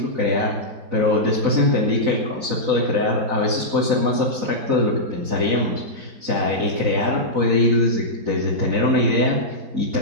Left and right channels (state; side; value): late; left; 4.0 ms